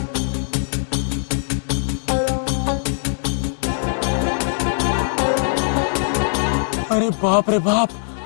अरे बाप रे बाप,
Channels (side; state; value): right; silent; digital silence